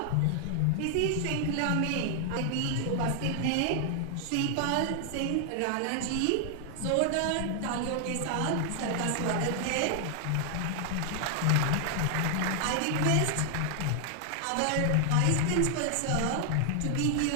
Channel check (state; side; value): different; both; correlation 0.00